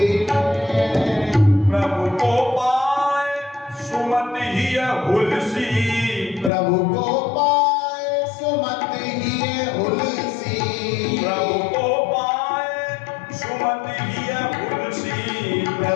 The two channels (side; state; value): right; drops out; at 6.5 s